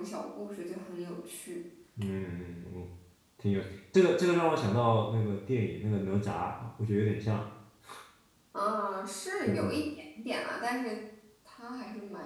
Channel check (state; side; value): identical; both; correlation 1.00